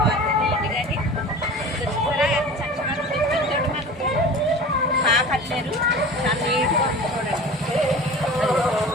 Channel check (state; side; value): normal; both; correlation 0.37